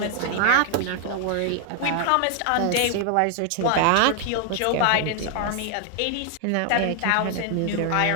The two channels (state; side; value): different; both; correlation 0.00